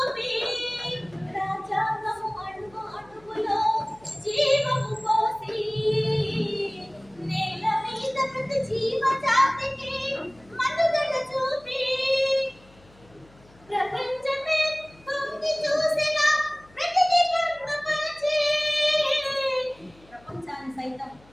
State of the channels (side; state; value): left; noise; hum, 27 dB below the sound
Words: రాజ్యాంగము అణువు అణువులో జీవము పోసి నేల మీద ప్రతి జీవజాతికి మనుగడ చూపి ప్రపంచమే తొంగి చూసిన ప్రతిదీ పొందుపరిచి ప్రపంచాన్ని సైతం